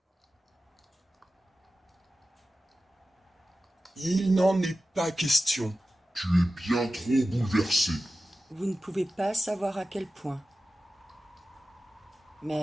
Il n'en est pas question. Tu es bien trop bouleversé. Vous ne pouvez pas savoir à quel point.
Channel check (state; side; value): normal; both; correlation 0.94